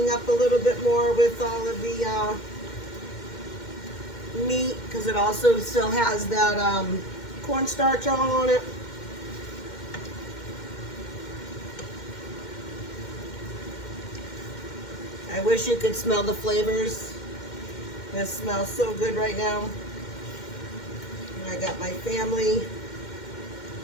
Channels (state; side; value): late; right; 2.1 ms